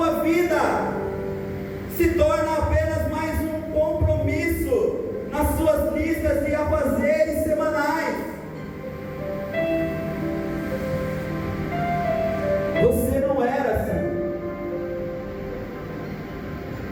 vida, se torna apenas mais um compromisso nas suas listas de afazeres semanais. Você não era assim.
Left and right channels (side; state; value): both; identical; correlation 1.00